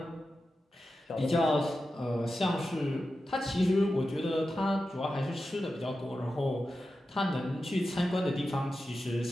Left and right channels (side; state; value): both; normal; correlation 0.91